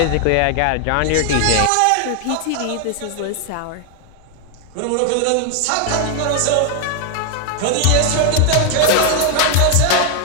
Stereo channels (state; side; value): different; both; correlation 0.00